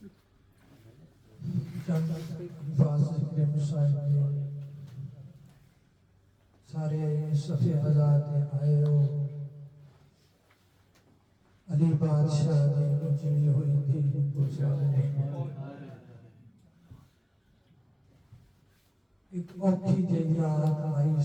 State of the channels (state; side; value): identical; both; correlation 1.00